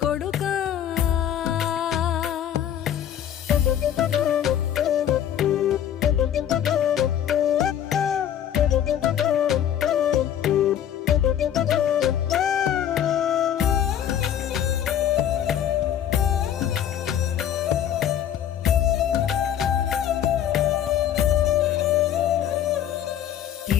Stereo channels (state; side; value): quieter; right; 10.0 dB